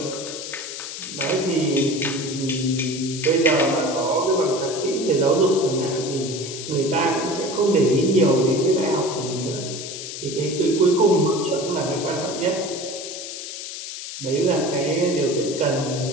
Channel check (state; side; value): noise; left; hiss, 8 dB below the sound